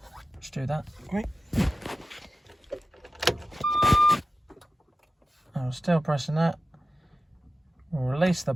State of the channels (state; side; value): normal; both; correlation 0.93